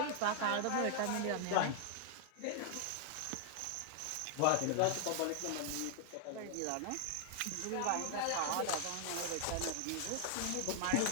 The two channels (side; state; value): both; different; correlation 0.00